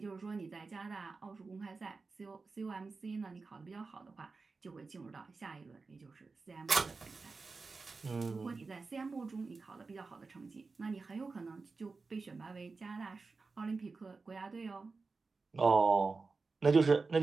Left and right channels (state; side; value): quieter; left; 4.2 dB